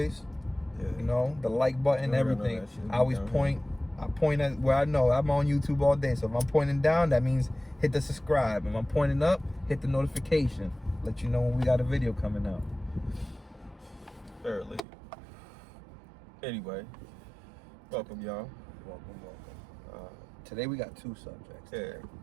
Yeah. You know, the like button, No, everything. that shit I always down point. I point at where I know. I'm on YouTube all day. So if I'm pointing down, that means hit the subscribe. If I'm pointing up, hit the notification. Let you know when we got a video coming out. Fairly. Anyway, welcome, y'all. Welcome. Today we got two subjects. Yeah,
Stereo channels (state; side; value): drops out; left; at 14.8 s